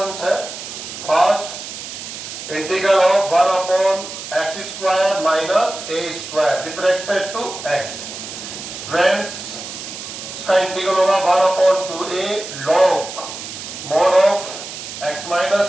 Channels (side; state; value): right; noise; hiss, 10 dB below the sound